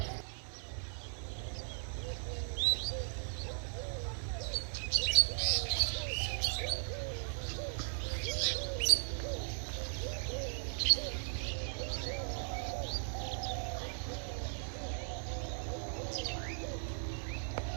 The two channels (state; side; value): silent; left; digital silence